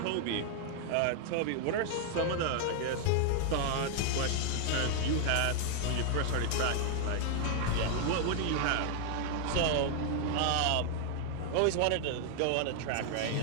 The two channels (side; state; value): both; different; correlation 0.00